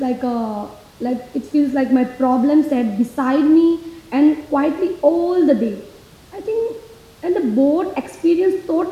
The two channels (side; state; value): both; identical; correlation 1.00